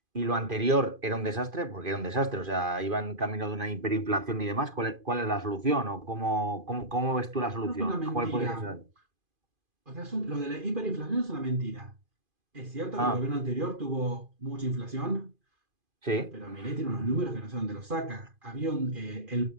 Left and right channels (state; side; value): late; left; 2.5 ms